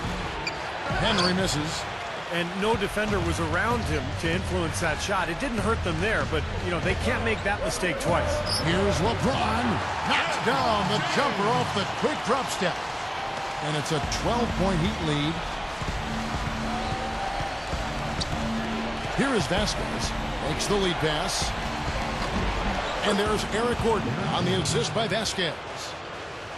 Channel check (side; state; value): both; identical; correlation 1.00